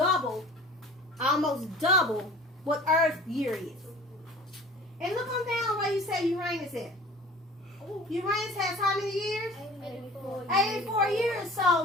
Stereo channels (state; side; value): normal; both; correlation 0.44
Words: what Earth year is. And look on down where you say Uranus is. Uranus has how many years? 84 years. So